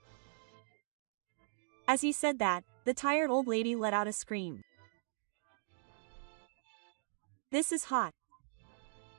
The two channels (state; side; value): silent; left; digital silence